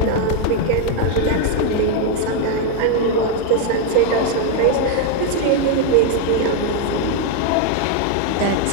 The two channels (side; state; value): both; different; correlation 0.01